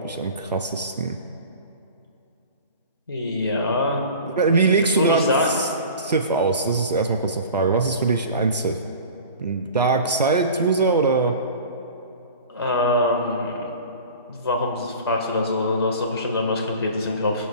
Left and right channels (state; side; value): inverted; both; correlation -0.40